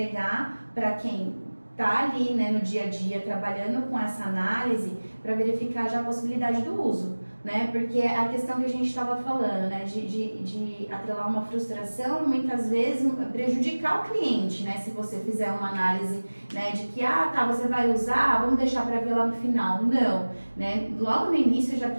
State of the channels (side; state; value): both; inverted; correlation -1.00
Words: para quem está ali, né, no dia a dia trabalhando com essa análise, para verificar já a possibilidade do uso, né? Porque a questão que a gente estava falando, né, de atrelar uma frustração, muitas vezes prejudicar o cliente, né? Se você fizer uma análise, né, de que, você vai usar, vamos deixar para ver lá no final. Não, né? Logo no início já